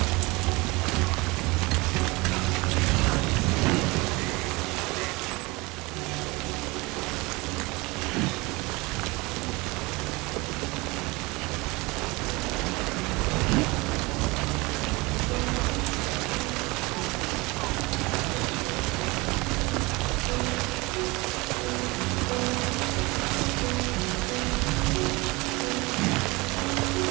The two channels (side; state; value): left; quieter; 24.2 dB